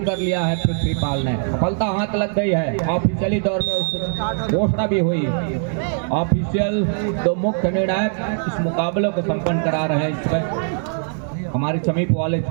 कर लिया है पृथ्वीपाल ने। सफलता हाथ लग गई है। ऑफिशियली तौर पर घोषणा भी हुई। ऑफिशियल 2 मुख्य निर्णायक इस मुकाबले को संपन्न करा रहे हैं। इसमें हमारे समीप वाले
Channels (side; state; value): left; silent; 65 dB below the other